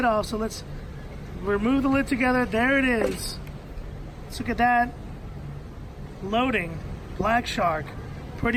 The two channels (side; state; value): both; identical; correlation 1.00